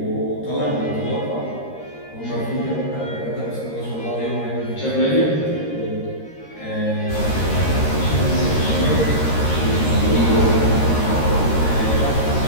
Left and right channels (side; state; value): right; late; 13 ms